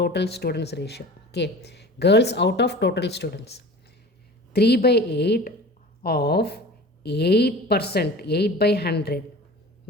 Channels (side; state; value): both; normal; correlation 0.39